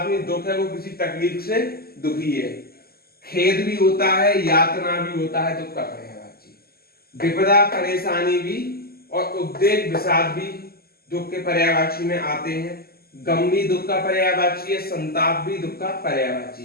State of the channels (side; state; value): right; late; 0.45 ms